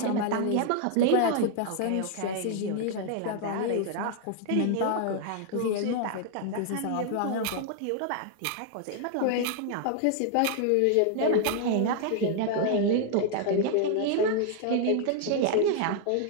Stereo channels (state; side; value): different; both; correlation 0.00